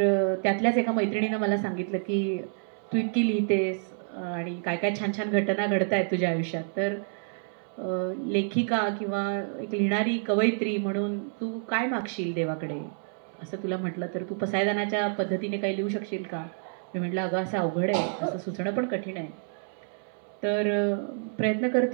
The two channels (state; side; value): silent; left; 58 dB below the other